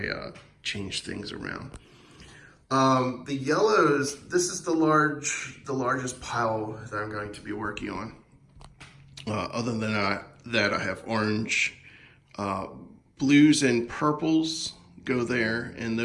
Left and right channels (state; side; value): identical; both; correlation 1.00